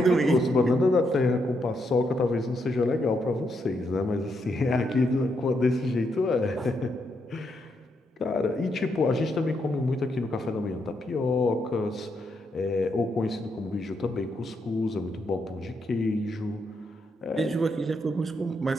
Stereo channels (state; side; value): normal; both; correlation 0.79